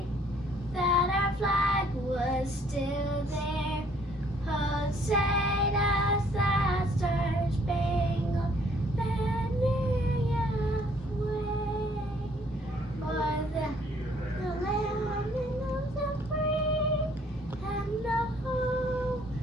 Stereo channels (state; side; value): normal; both; correlation 0.62